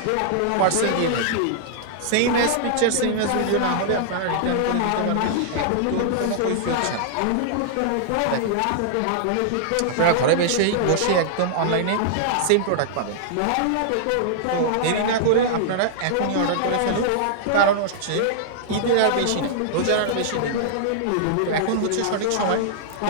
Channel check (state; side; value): different; both; correlation -0.01